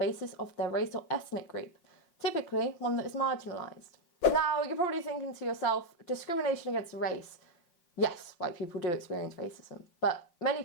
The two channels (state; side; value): late; right; 5.7 ms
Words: of their race or ethnic group, typically one that is marginalised. Now, you're probably thinking to yourself, discrimination against race. Yes, white people do experience racism, but many